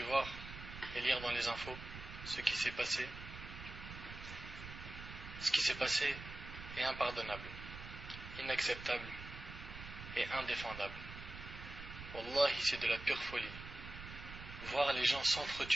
voir et lire dans les infos, ce qui s'est passé est impardonnable, inacceptable et indéfendable. Wallahi, c'est de la pure folie. Voir les gens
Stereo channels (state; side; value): noise; right; rumble, 11 dB below the sound